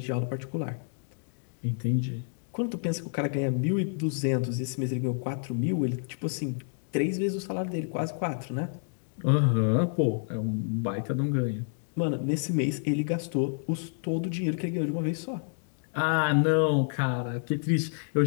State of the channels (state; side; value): silent; right; digital silence